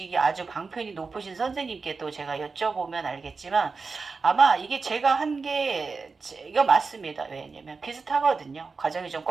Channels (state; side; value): quieter; left; 4.5 dB